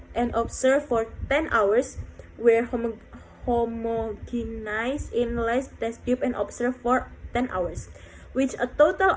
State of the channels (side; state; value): both; identical; correlation 1.00